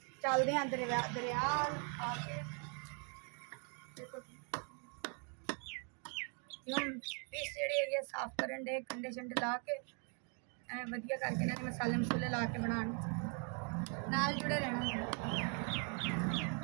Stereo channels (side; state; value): left; quieter; 39.5 dB